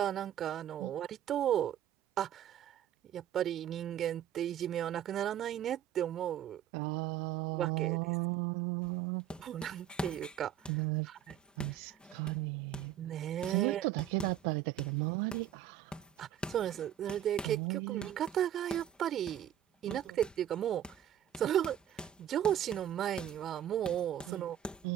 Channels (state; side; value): quieter; left; 10.9 dB